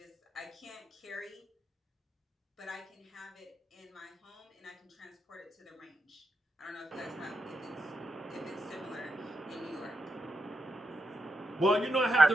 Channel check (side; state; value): both; normal; correlation 0.84